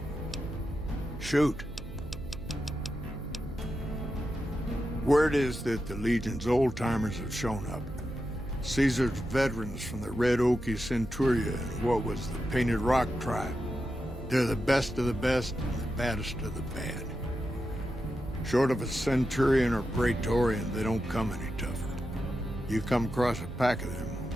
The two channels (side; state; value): right; noise; hum, 12 dB below the sound